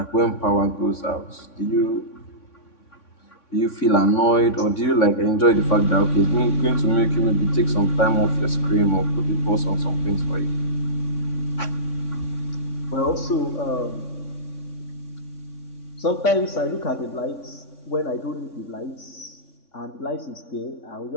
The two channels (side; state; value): right; late; 3.6 ms